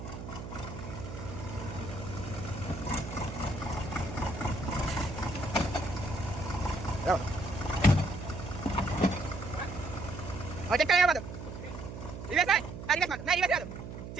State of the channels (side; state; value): right; noise; hum, 9 dB below the sound